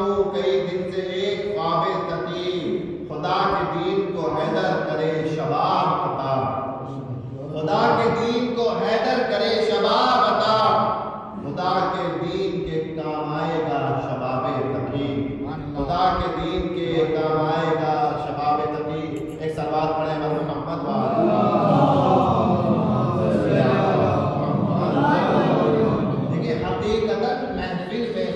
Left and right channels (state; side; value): identical; both; correlation 1.00